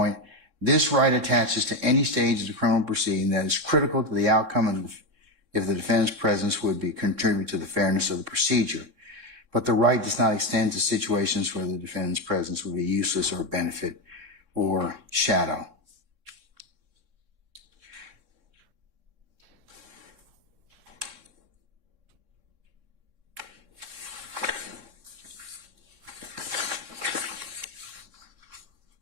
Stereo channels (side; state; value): left; late; 3.6 ms